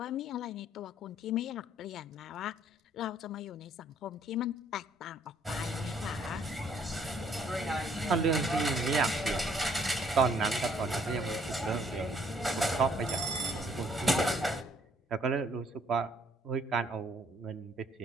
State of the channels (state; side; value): normal; both; correlation 0.64